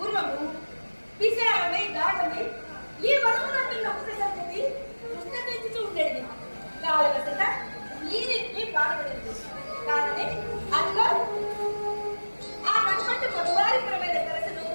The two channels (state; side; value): inverted; both; correlation -1.00